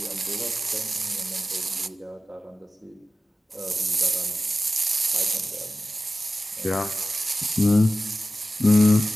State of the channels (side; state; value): both; normal; correlation 0.95